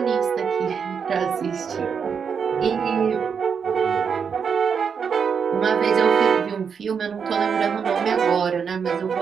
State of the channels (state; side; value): quieter; left; 6.5 dB